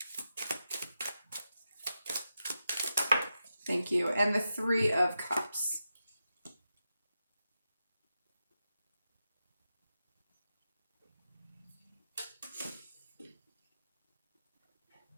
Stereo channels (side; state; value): both; inverted; correlation -0.89